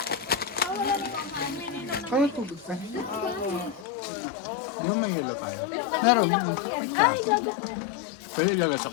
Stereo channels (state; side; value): drops out; right; at 3.9 s